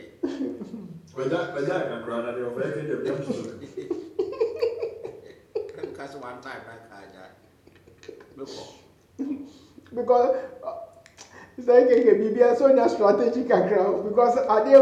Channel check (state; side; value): identical; both; correlation 1.00